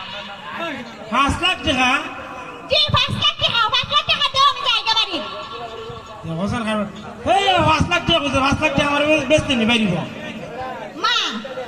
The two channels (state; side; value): identical; both; correlation 1.00